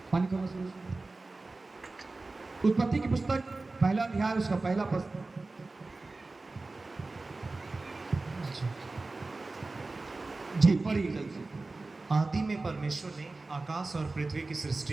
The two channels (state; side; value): quieter; left; 3.4 dB